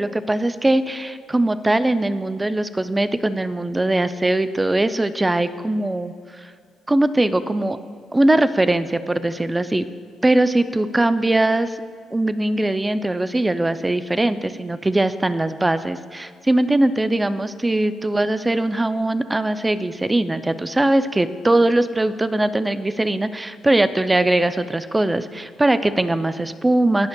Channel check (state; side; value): normal; both; correlation 0.97